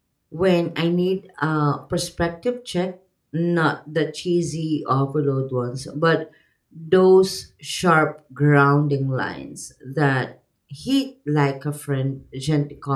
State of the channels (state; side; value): identical; both; correlation 1.00